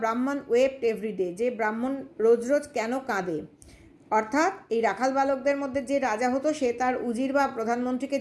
ওয়েপ্ট এভরিডে, যে ব্রাহ্মণ রোজ রোজ কেন কাঁদে। অর্থাৎ এই রাখাল বালকদের মধ্যে যে রাজা হতো সে তার উজির বা প্রধানমন্ত্রীকে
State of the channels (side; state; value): both; identical; correlation 1.00